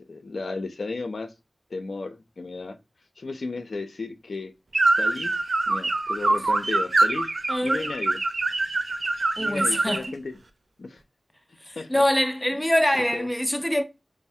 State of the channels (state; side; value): normal; both; correlation 0.96